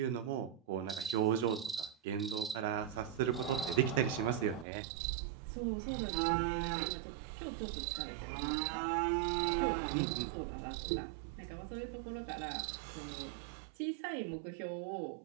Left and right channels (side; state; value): left; drops out; at 4.7 s